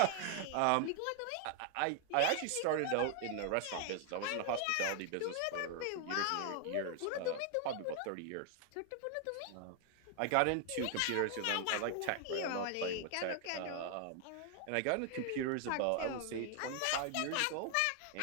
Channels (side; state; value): both; different; correlation 0.00